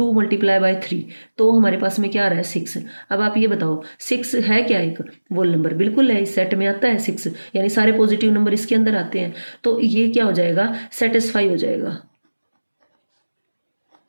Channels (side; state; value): both; inverted; correlation -1.00